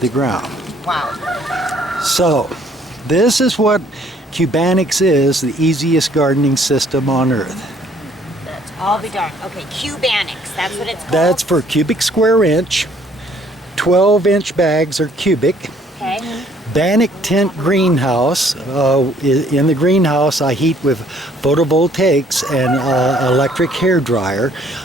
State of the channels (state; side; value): normal; both; correlation 0.61